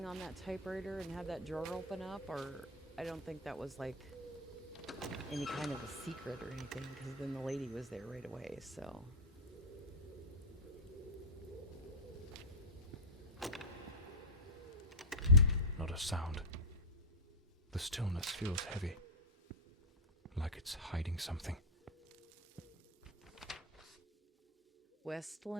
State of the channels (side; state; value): both; normal; correlation -0.04